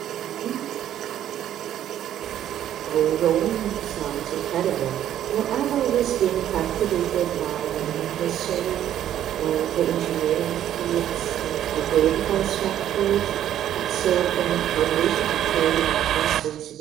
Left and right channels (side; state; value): left; quieter; 11.2 dB